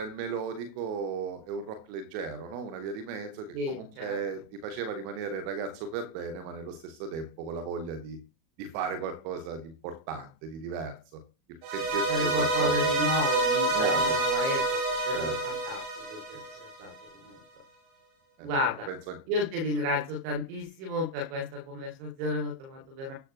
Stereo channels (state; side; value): late; left; 37 ms